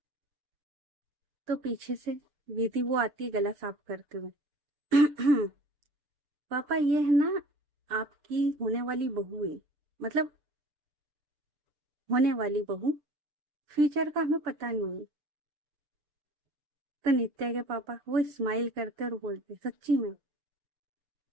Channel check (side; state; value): left; late; 6.8 ms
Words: तो पीछे से विधि वो आती है गला साफ करते हुए पापा ये है ना आपकी होने वाली बहू है, मतलब होने वाली बहू, फ्यूचर का हमें पता नहीं है। तो नित्या के पापा वो स्माइल करते और बोलते सच्ची में।